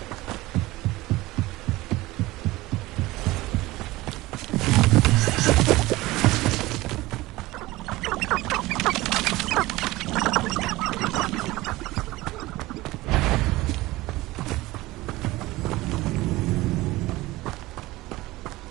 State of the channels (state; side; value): quieter; left; 19.1 dB